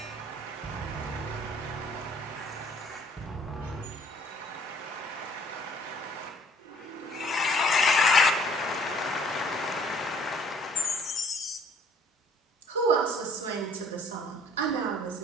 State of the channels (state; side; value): normal; both; correlation 0.57